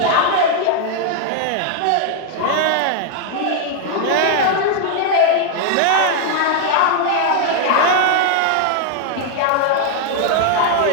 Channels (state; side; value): different; both; correlation 0.00